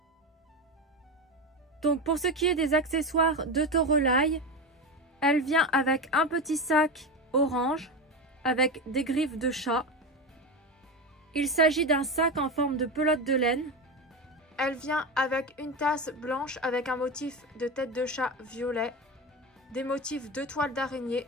Donc pour ce qui est des accessoires de Torolai, elle vient avec un petit sac orange avec des griffes de chat. Il s'agit d'un sac en forme de pelote de laine. Elle vient avec une tasse blanche avec un motif de tête de chat violet, des motifs de toile d'araignée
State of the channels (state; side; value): normal; both; correlation 0.20